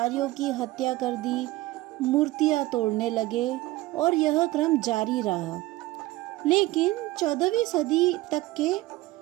की हत्या कर दी, मूर्तियां तोड़ने लगे और यह क्रम जारी रहा। लेकिन 14वीं सदी तक के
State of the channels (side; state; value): left; quieter; 18.4 dB